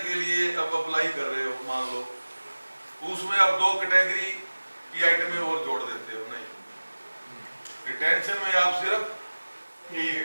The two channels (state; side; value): inverted; both; correlation -1.00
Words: के लिए अब अप्लाई कर रहे हो, मान लो उसमें आप 2 कैटेगरी की आइटमें और जोड़ देते हो, नहीं, रिटेंशन में आप सिर्फ